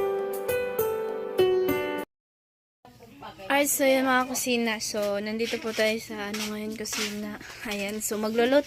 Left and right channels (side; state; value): both; identical; correlation 1.00